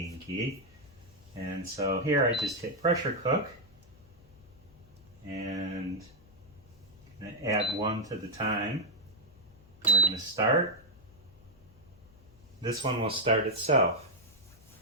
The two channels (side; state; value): left; noise; hum, 26 dB below the sound